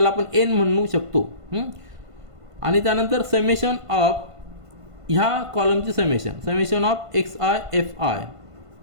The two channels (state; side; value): late; left; 1.5 ms